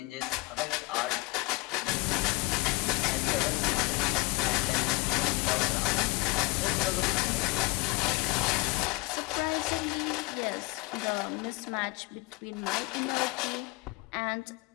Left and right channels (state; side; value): quieter; right; 22.6 dB